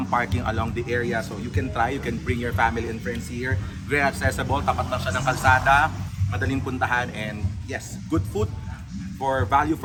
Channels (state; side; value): identical; both; correlation 1.00